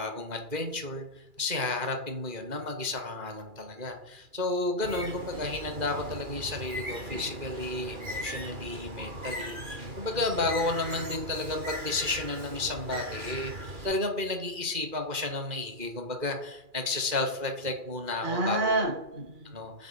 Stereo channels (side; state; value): left; late; 2.4 ms